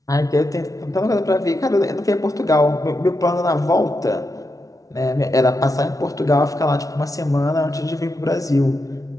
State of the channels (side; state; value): right; late; 0.17 ms